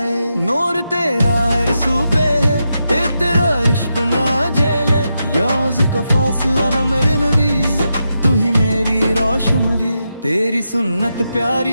नूर तेरा हर सूबे है, तेरा इश्क ना झेले। याज़ का फासला न मेरे नबी, तू ही मेरी रोशनी। तेरी सुन्नत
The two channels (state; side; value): inverted; both; correlation -0.86